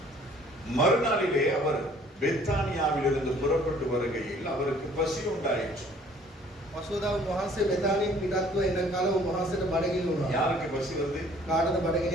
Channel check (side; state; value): both; normal; correlation 0.56